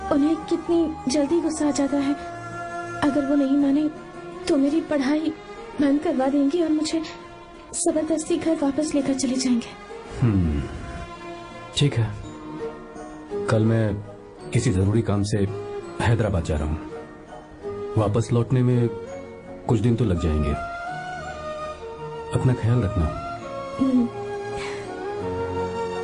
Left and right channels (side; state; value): both; identical; correlation 1.00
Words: उन्हें कितनी जल्दी गुस्सा आ जाता है। अगर वो नहीं माने तो मेरी पढ़ाई बंद करवा देंगे और मुझे जबरदस्ती घर वापस लेकर चले जाएंगे। ठीक है, कल मैं किसी जरूरी काम से हैदराबाद जा रहा हूँ। वापस लौटने में कुछ दिन तो लग जाएंगे। अपना ख्याल रखना।